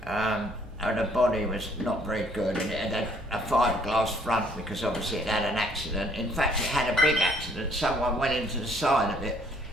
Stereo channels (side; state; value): both; normal; correlation 0.63